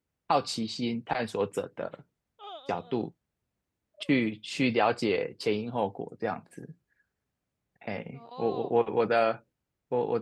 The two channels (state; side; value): identical; both; correlation 1.00